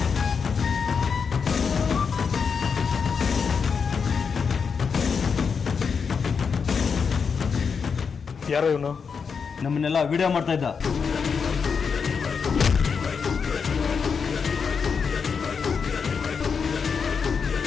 ಯಾರೋ ಇವನು? ನಮ್ಮನ್ನೆಲ್ಲ ವಿಡಿಯೋ ಮಾಡ್ತಾ ಇದ್ದ.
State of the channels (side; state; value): right; quieter; 5.9 dB